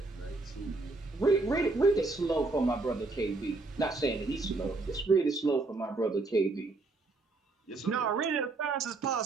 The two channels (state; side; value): quieter; left; 3.4 dB